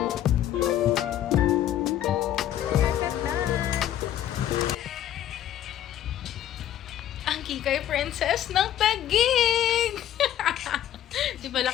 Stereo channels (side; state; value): right; quieter; 11.6 dB